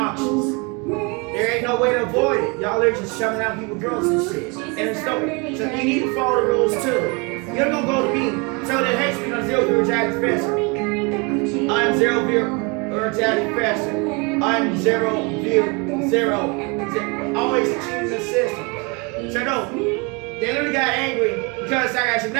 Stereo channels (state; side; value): quieter; left; 30.1 dB